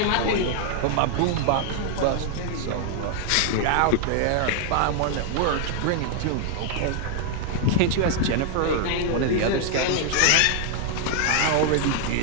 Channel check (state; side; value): different; both; correlation 0.00